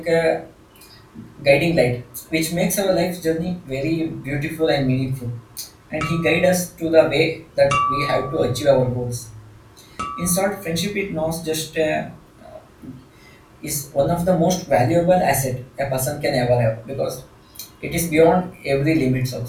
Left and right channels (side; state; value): both; identical; correlation 1.00